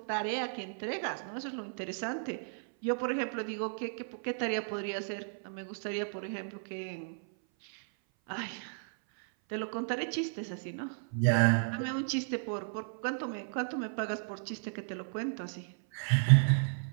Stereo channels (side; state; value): left; silent; 55 dB below the other